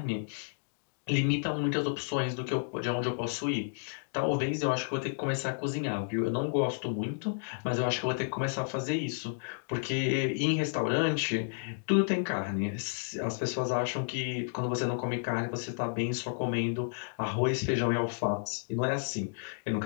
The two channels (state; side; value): silent; right; digital silence